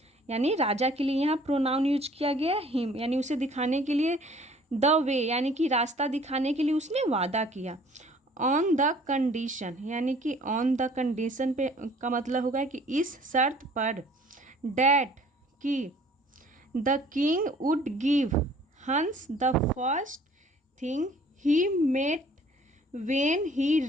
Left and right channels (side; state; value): both; normal; correlation 0.54